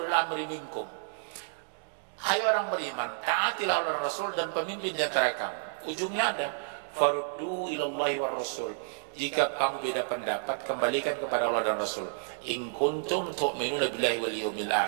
amri minkum. Hai orang beriman, taatilah Allah Rasul dan pemimpin di antara kamu. Ujungnya ada, faruddu ilallahi war rasul. Jika kamu beda pendapat, kembalikan kepada Allah dan Rasul. In kuntum tu'minuna billahi wal yawmil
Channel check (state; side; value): silent; left; digital silence